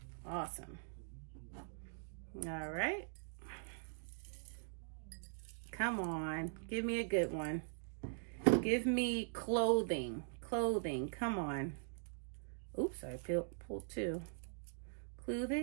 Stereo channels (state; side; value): silent; left; digital silence